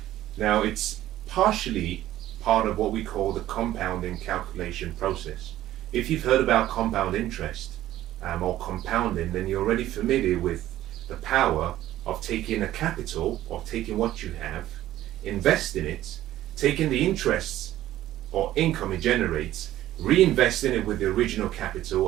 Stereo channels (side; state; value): left; quieter; 13.8 dB